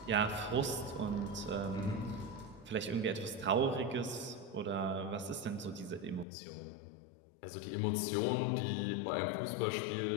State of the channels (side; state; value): right; drops out; at 6.2 s